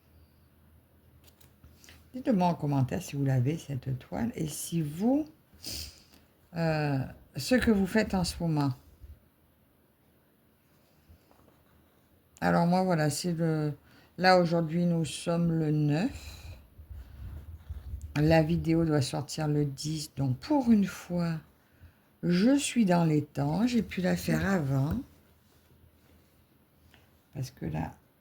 Dites-moi en commentaire si vous l'avez, cette toile, et si vous, ce que vous faites en ce moment. Alors moi, voilà, là, aujourd'hui, nous sommes le 9. La vidéo doit sortir le 10. Donc, pour une fois, je suis dans les temps. J'ai pu la faire avant. Parce que là,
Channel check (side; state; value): both; identical; correlation 1.00